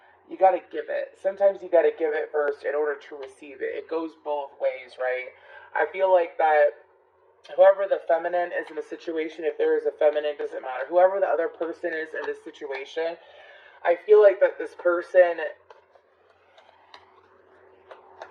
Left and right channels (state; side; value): identical; both; correlation 1.00